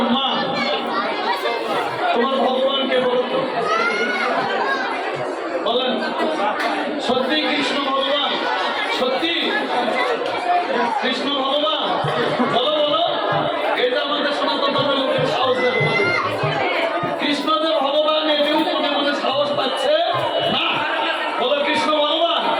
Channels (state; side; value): identical; both; correlation 1.00